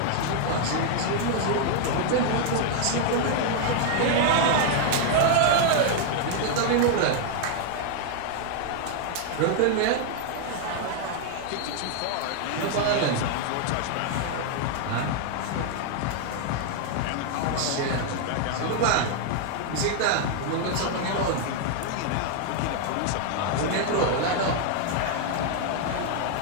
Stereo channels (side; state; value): both; different; correlation 0.00